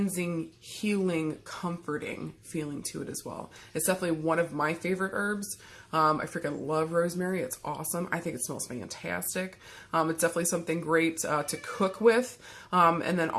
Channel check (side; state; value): both; identical; correlation 1.00